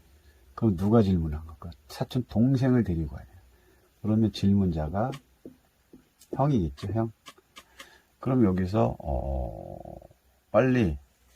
그럼 누가 질문한 걸까? 사촌 동생을 데리고 와야 돼요. 그러면 질문자가 형이겠죠, 형. 그럼 여기서 빨리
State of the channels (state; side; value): identical; both; correlation 1.00